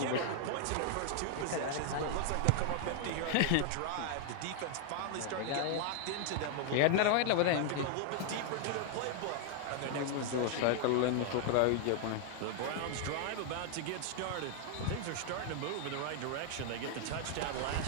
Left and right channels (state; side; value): different; both; correlation 0.00